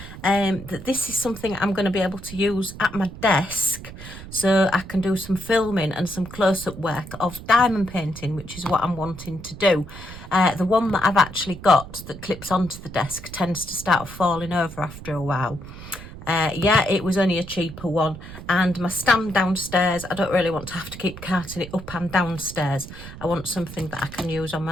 that this is something I'm going to be able to use at my desk, so I can do some filming and some close-up work of diamond painting, which is what I'm wanting to do. The one that I've actually got that clips onto the desk tends to start falling over after a while. Yeah, it was only a cheaper one, and my stand downstairs, I don't really want to have to keep carting it up and downstairs. I want something that I can use on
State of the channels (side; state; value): right; noise; rumble, 14 dB below the sound